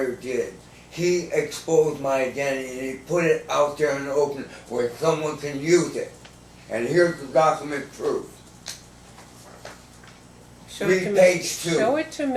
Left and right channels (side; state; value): both; identical; correlation 1.00